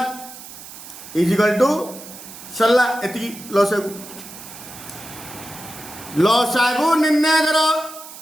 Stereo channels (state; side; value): noise; right; hiss, 15 dB below the sound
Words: is equal to सरला एति लसागु निर्णय करो